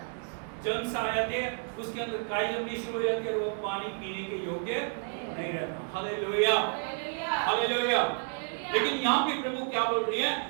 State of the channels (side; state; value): left; silent; 57 dB below the other